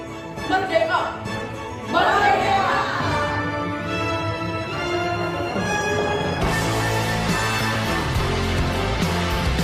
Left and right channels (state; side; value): identical; both; correlation 1.00